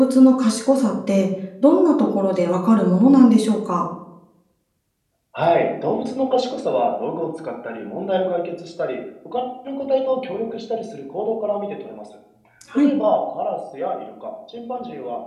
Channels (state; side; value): identical; both; correlation 1.00